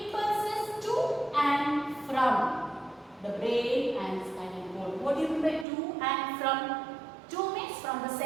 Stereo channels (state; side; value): drops out; left; at 5.7 s